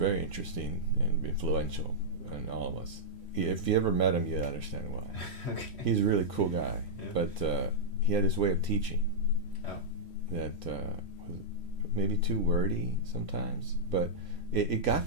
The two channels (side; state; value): right; late; 3.1 ms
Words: interesting and influential on all of us. If you ever met him, you'd understand why. Okay. He's a really cool guy, Yeah. but he had this way of teaching that was maybe too wordy sometimes, but it